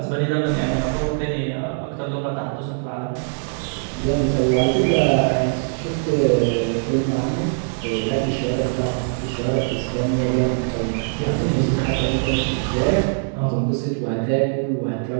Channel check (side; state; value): left; silent; digital silence